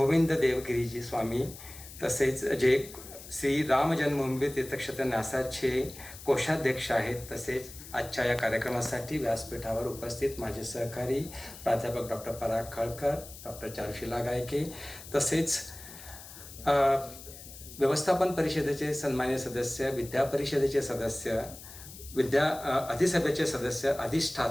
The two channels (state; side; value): noise; left; hiss, 15 dB below the sound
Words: देवगिरीजी स्वामी, तसेच जे श्री राम जन्मभूमी तीर्थक्षेत्र न्यासाचे कोषाध्यक्ष आहेत, तसेच आजच्या या कार्यक्रमासाठी व्यासपीठावर उपस्थित माझे सहकारी प्राध्यापक डॉक्टर पराग खळकर, डॉक्टर चारुशिला गायके, तसेच व्यवस्थापन परिषदेचे सन्मान्य सदस्य, विद्या परिषदेचे सदस्य, अधिसभेचे सदस्य,